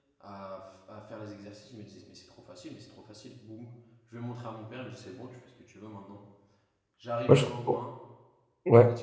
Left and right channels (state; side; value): identical; both; correlation 1.00